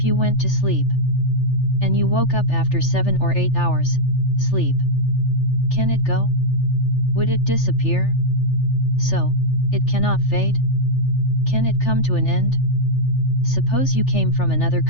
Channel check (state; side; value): late; right; 3.4 ms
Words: you went to sleep, and you woke up after 7 or 8 hours, sleep. Can it go? Would it disappear? So, it cannot fade? Can it come to an end? Suppose you came from another